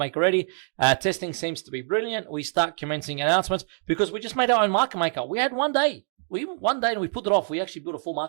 ready? Testing seems to be brilliant. We start commencing announcements because we just made our own market maker. We had one day. And we put it off. We actually built a full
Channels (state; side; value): silent; left; digital silence